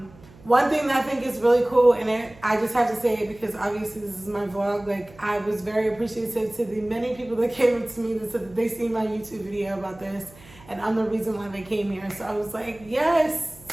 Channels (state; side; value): noise; right; hum, 23 dB below the sound